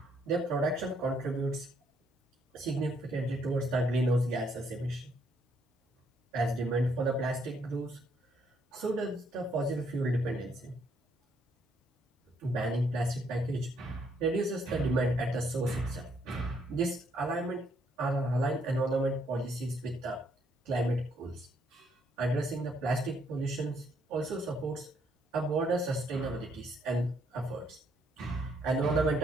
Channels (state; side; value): normal; both; correlation 0.71